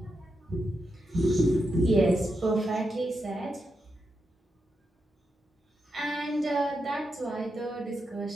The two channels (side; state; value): both; normal; correlation 0.86